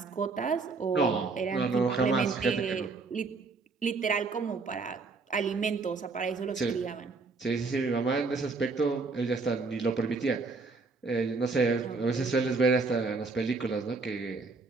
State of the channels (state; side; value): quieter; left; 4.1 dB